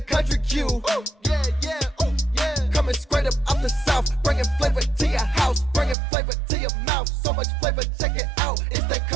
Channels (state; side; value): drops out; left; at 6.0 s